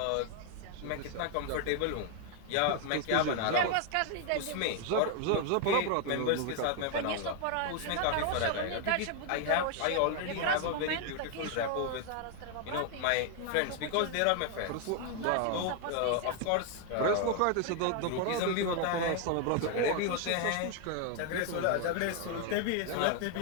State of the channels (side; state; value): both; different; correlation 0.00